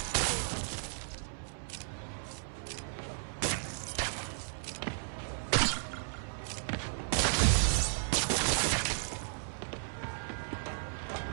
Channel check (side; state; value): left; silent; 55 dB below the other